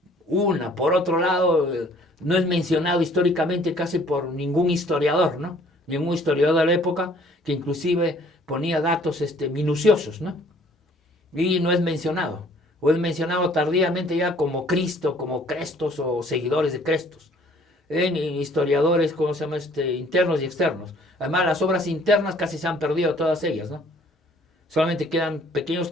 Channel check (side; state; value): both; normal; correlation 0.57